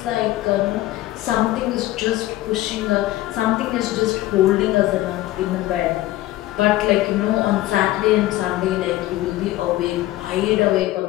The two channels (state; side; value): quieter; right; 16.3 dB